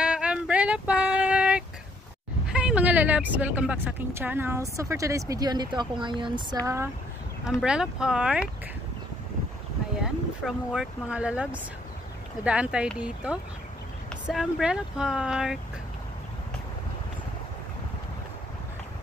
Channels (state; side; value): normal; both; correlation 0.67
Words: Umbrella Park. Hi mga lalabs! Welcome back sa aking channel. So for today's video, andito ako ngayon sa Umbrella Park. Ayan, from work mga lalabs. Nadaan tayo dito sa Umbrella Park.